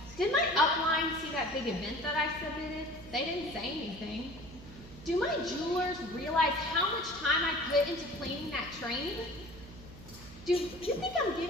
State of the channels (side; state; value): right; noise; hum, 16 dB below the sound